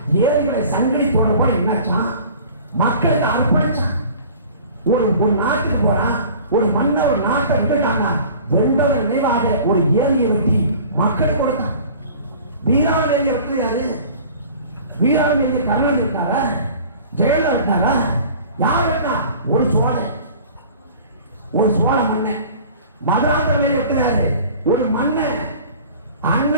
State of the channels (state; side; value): inverted; both; correlation -0.44